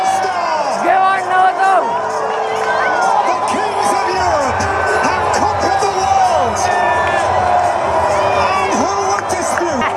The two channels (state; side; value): identical; both; correlation 1.00